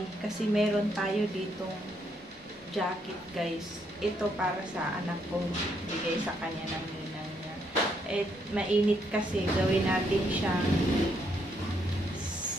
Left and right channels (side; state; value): both; normal; correlation 0.74